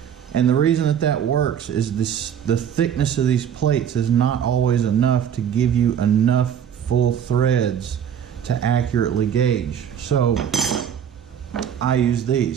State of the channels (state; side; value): quieter; left; 8.7 dB